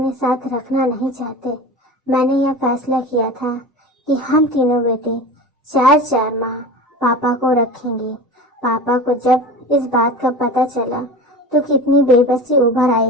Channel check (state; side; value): normal; both; correlation 0.33